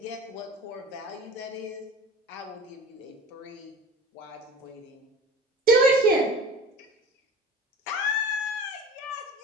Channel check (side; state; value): both; normal; correlation 0.38